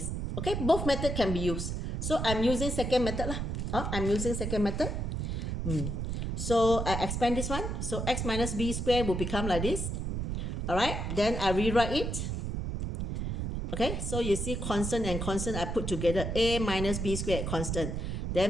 Okay, both methods can be used. So I'm using second method lah. I'm using second method. So I expand this one. So x minus b squared will become like this. Alright, then I rewrite it. Okay, so you see constant and constant I put together. A minus b squared, constant.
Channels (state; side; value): noise; right; rumble, 2 dB below the sound